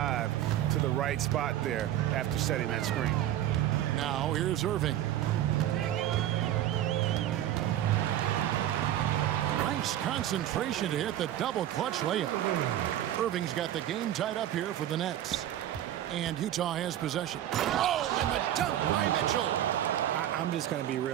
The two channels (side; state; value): left; quieter; 12.2 dB